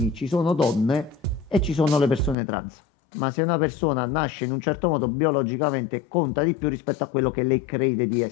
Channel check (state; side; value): drops out; right; at 2.4 s